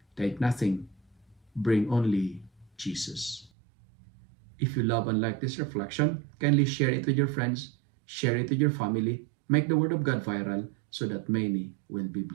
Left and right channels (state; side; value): drops out; left; at 3.5 s